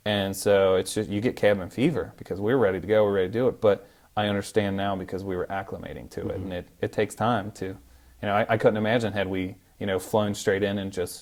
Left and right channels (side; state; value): both; identical; correlation 1.00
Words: and so it's just you get cabin fever because we're ready to go, we're ready to do it, but I understand now because we were acclimating to it, Mm-hmm. and it takes time to, I couldn't imagine had we, flown straight in and